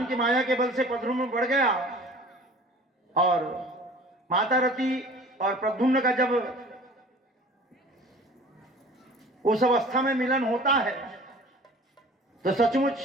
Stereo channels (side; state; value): both; normal; correlation 0.45